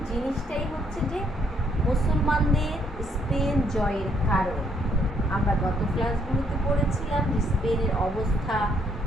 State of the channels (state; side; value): normal; both; correlation 0.70